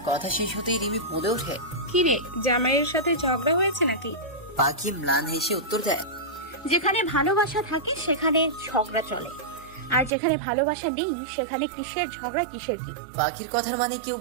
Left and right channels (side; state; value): left; drops out; at 10.1 s